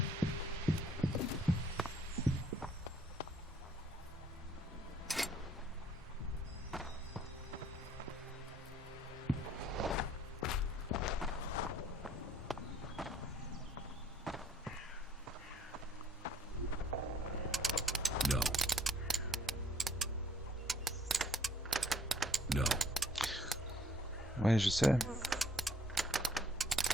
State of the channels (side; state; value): both; normal; correlation 0.60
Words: Ouais, je sais.